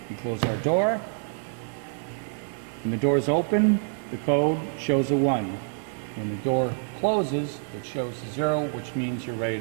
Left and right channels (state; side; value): silent; left; digital silence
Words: We close our door. When the door is open, the code shows a 1. When the door closes, it shows a 0, which means you're ready